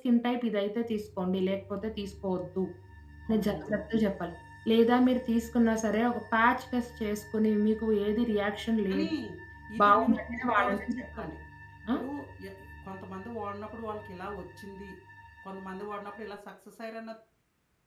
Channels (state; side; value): identical; both; correlation 1.00